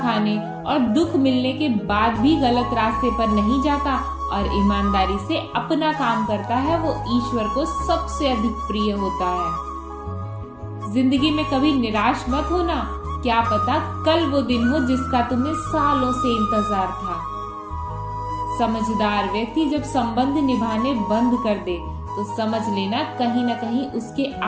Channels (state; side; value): identical; both; correlation 1.00